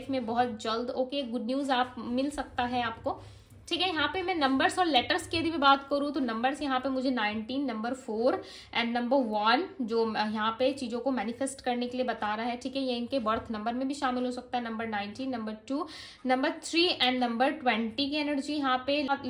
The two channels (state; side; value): identical; both; correlation 1.00